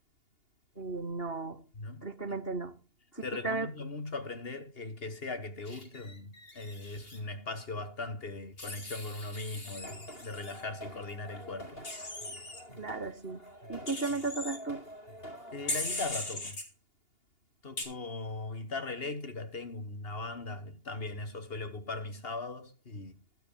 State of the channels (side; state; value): right; late; 2.8 ms